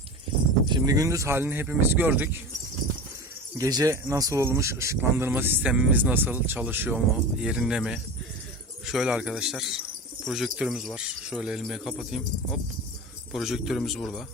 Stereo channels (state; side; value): normal; both; correlation 0.30